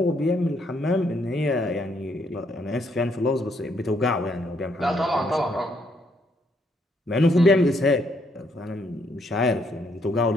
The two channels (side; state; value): both; normal; correlation 0.72